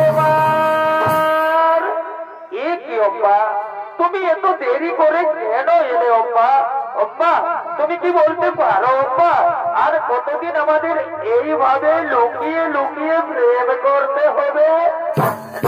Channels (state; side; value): identical; both; correlation 1.00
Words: এ কি অম্বা, তুমি এত দেরি করে কেন এলে অম্বা? অম্বা তুমি কি বলতে পারো অম্বা, আর কতদিন আমাদের এইভাবে লুকিয়ে লুকিয়ে প্রেম করতে হবে?